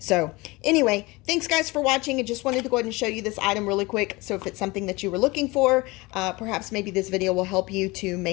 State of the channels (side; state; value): right; quieter; 23.1 dB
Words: anyway, thanks guys for watching. I just wanted to go ahead and show you this item really quick. So if it's something that you were looking for, perhaps maybe this video will help you to